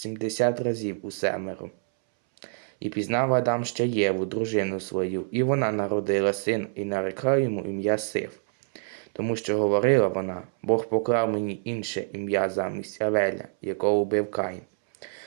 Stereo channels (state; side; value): silent; left; 61 dB below the other